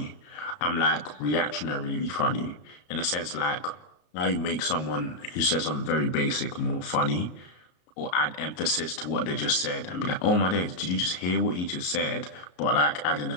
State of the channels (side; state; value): right; late; 33 ms